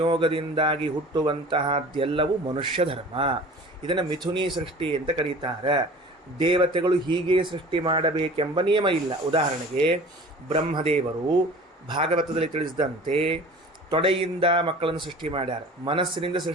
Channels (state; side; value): normal; both; correlation 0.42